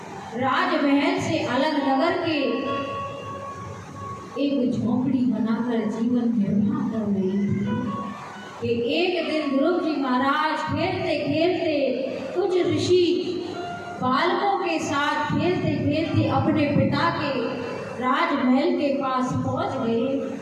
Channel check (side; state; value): both; identical; correlation 1.00